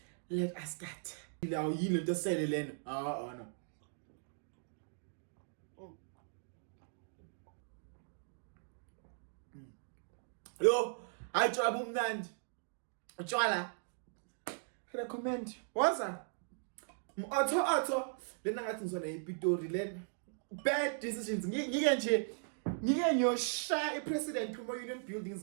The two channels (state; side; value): silent; left; digital silence